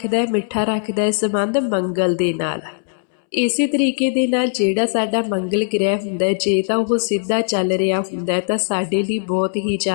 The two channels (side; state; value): right; silent; 66 dB below the other